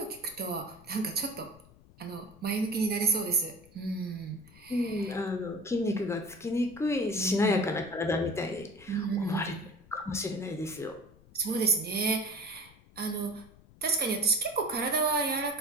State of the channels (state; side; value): noise; left; rumble, 24 dB below the sound